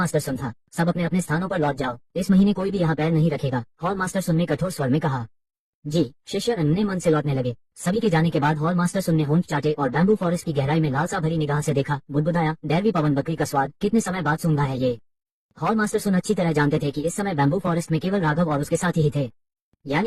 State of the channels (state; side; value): identical; both; correlation 1.00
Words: सुन था। सब अपने अपने स्थानों पर लौट जाओ, इस महीने कोई भी यहाँ पैर नहीं रखेगा, हॉल मास्टर सुन ने कठोर स्वर में कहा। जी, शिष्य अन्य मन से लौटने लगे। सभी के जाने के बाद हॉल मास्टर सुन ने होंठ चाटे और बैम्बू फॉरेस्ट की गहराई में लालसा भरी निगाह से देखा, बुदबुदाया, दैवी पवन बकरी का स्वाद, कितने समय बाद सूंघा है ये। हॉल मास्टर सुन अच्छी तरह जानते थे कि इस समय बैम्बू फॉरेस्ट में केवल राघव और उसके साथी ही थे,